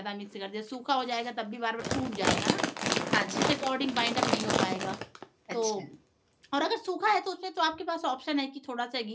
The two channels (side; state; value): both; identical; correlation 1.00